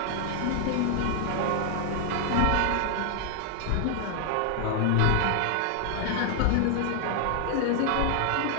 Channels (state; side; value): different; both; correlation 0.00